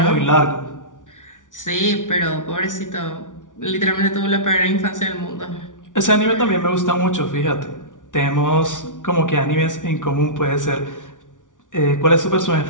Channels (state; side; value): late; right; 0.87 ms